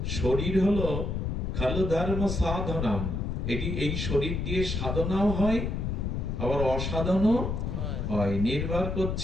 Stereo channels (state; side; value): noise; left; rumble, 2 dB below the sound